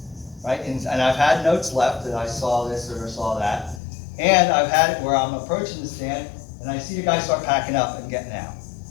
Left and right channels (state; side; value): drops out; right; at 3.8 s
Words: right? And I've had notes left that I saw this or saw that, and I've had it where I'm approaching the stand and I see the guy start packing up and getting out,